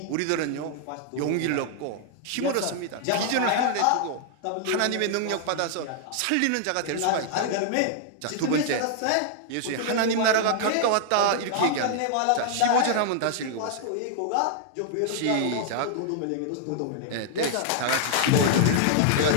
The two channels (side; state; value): both; different; correlation -0.01